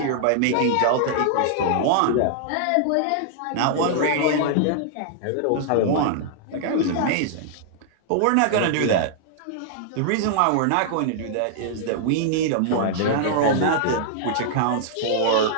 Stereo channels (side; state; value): both; different; correlation -0.01